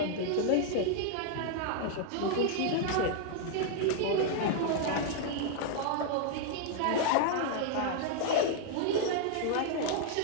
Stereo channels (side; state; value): both; different; correlation 0.00